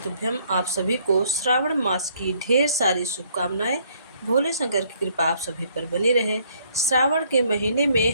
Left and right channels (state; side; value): inverted; both; correlation -0.65